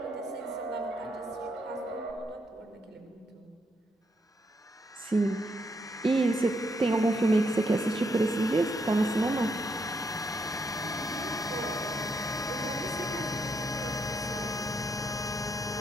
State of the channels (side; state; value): both; normal; correlation 0.77